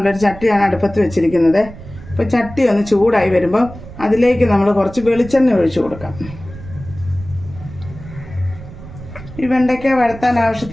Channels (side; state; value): right; noise; rumble, 15 dB below the sound